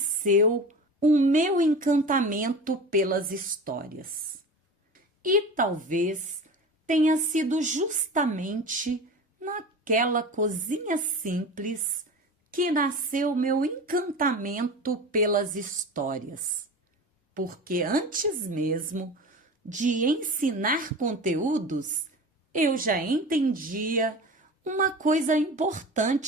o meu encantamento pelas histórias. E talvez tenha sido justamente naquela cozinha simples que nasceu meu encantamento pelas histórias. Porque antes mesmo de ensinar conteúdos, eu já entendia uma coisa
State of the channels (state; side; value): normal; both; correlation 0.33